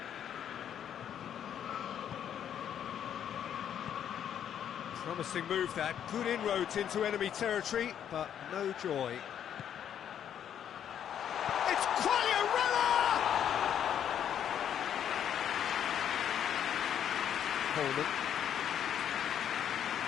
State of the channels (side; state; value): right; quieter; 9.4 dB